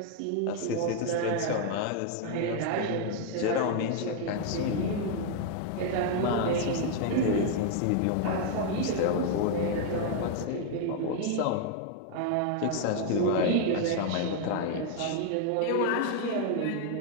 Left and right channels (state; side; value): different; both; correlation 0.00